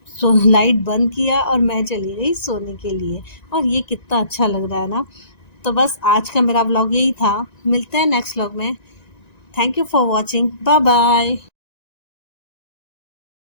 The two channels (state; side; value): late; right; 1.9 ms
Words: लाइट बंद किया और मैं चली गई सोने के लिए। और ये कितना अच्छा लग रहा है ना। तो बस आज का मेरा व्लॉग यही था। मिलते हैं नेक्स्ट व्लॉग में। Thank you for watching. Bye bye.